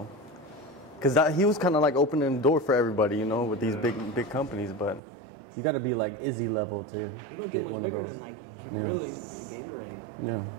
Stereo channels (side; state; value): left; drops out; at 5.0 s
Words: because he was kind of like opening the door for everybody, you know, with these big companies. But you got to be like Izzy level to You don't get get one of bigger those. than Nike. Yeah. Really, Gatorade. Yeah.